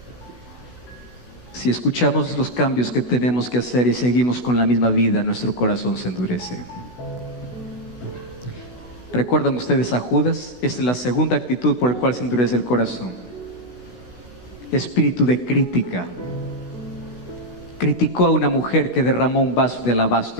Si escuchamos los cambios que tenemos que hacer y seguimos con la misma vida, nuestro corazón se endurece. ¿Recuerdan ustedes a Judas? Esta es la segunda actitud por la cual se endurece el corazón. Espíritu de crítica. Criticó a una mujer que derramó un vaso de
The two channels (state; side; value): late; right; 16 ms